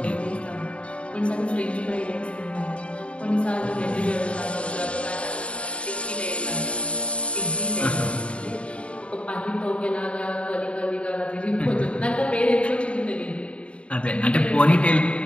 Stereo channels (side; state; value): right; late; 0.060 ms